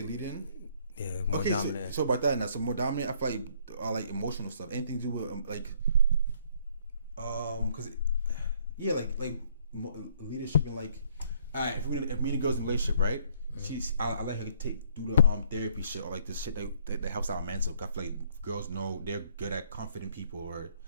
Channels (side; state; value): both; inverted; correlation -0.64